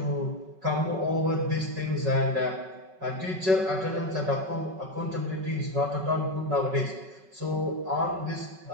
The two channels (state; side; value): late; left; 5.3 ms